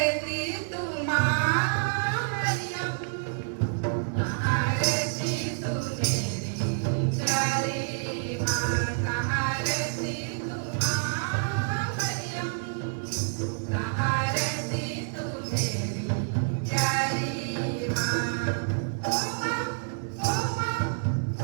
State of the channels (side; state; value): left; silent; 59 dB below the other